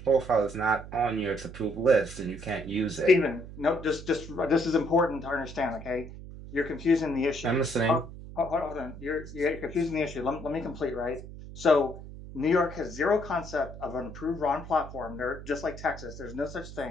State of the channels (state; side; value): noise; right; hum, 13 dB below the sound